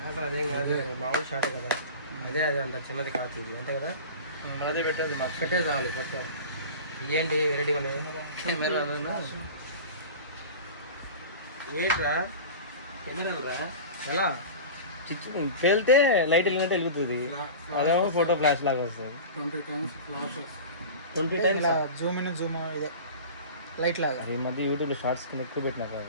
అదేం కాదు, మామూలు షార్ట్ కదా. అదే అంత చిన్నది కాదు ఇది, అంతే కదా. అదే పెట్టేది మాకు పెట్టే చాలు. కొత్త ఏంటి వెరైటీగా ఉన్నాయి ఏంట్రా? కెమెరా ఎలా పేలితే లైట్ వెళ్ళినట్టు వెలుగుతుంది, అదేమో ఫోటో ఫ్లాష్ లాగా వస్తుంది. 20 times flashes. 20 times Zoom in Zoom ఇదే లైట్ లాగా. ఈ మధ్య యూట్యూబ్లో షార్ట్స్ కింద ఎక్కువ పెట్టినా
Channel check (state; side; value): inverted; both; correlation -0.34